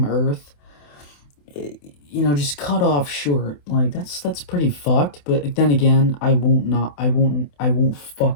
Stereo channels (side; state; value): right; late; 28 ms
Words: earth. You know, just cut off short. Like, that's pretty fucked. But then again, I won't